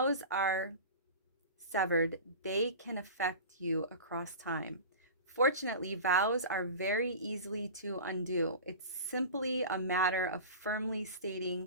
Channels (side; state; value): both; inverted; correlation -0.33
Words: are severed, they can affect you across time. Fortunately, vows are very easily to undo. It's simply a matter of firmly